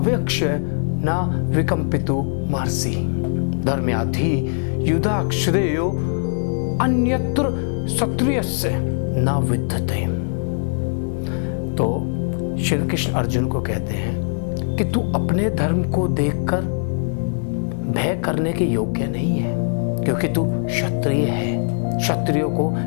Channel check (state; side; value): silent; right; 56 dB below the other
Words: न विकम्पितु महर्षि धर्म्याधि युधा श्रेयो अन्यत्र क्षत्रियस्य न विद्यते। तो श्री कृष्ण अर्जुन को कहते हैं कि तू अपने धर्म को देखकर भय करने के योग्य नहीं है, क्योंकि तू क्षत्रिय है। क्षत्रियों को